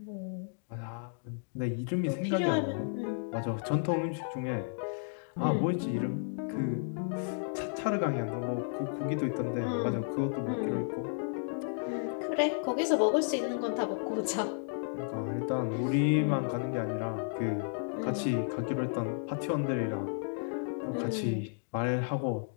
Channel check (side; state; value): right; silent; digital silence